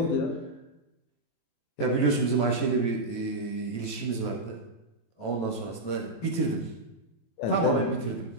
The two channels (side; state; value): right; late; 18 ms